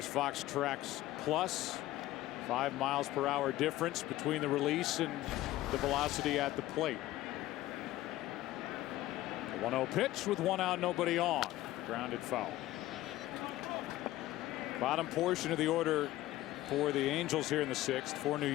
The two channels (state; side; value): quieter; right; 15.9 dB